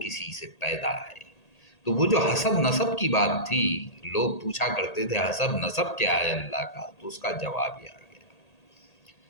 سے پیدا ہے۔ تو وہ جو حسب نسب کی بات تھی، لوگ پوچھا کرتے تھے حسب نسب کیا ہے اللہ کا، تو اس کا جواب یہ آ گیا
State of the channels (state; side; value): late; right; 1.8 ms